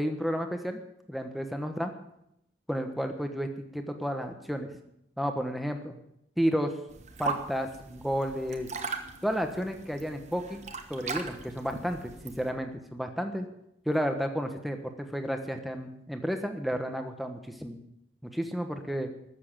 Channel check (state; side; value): normal; both; correlation 0.82